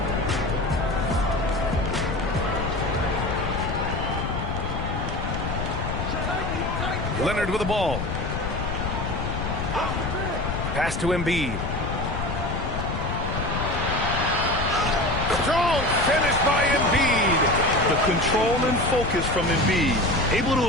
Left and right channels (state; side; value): noise; left; rumble, 4 dB below the sound